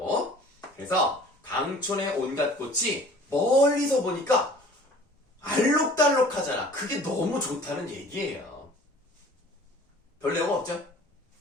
그래서 강촌의 온갖 꽃이 멀리서 보니까 알록달록하잖아. 그게 너무 좋다는 얘기예요. 별 내용 없죠?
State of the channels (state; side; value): normal; both; correlation 0.48